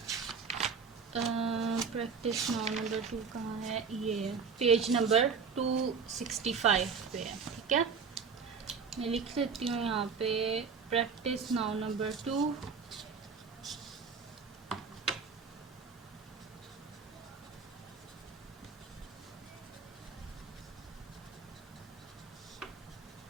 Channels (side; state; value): left; quieter; 5.7 dB